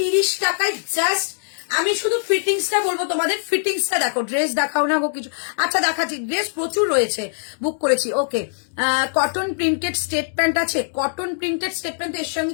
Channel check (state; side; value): silent; right; digital silence